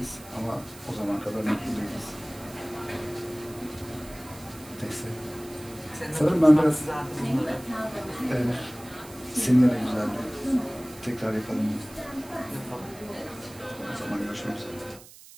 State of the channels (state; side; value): noise; right; hiss, 19 dB below the sound